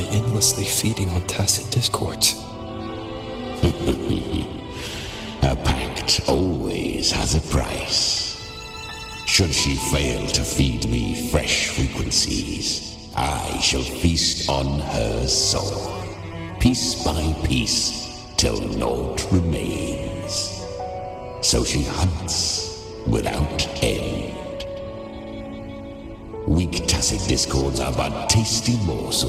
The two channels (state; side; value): identical; both; correlation 1.00